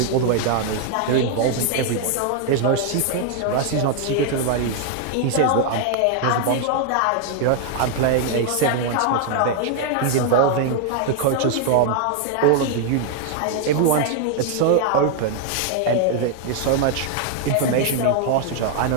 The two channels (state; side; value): different; both; correlation 0.00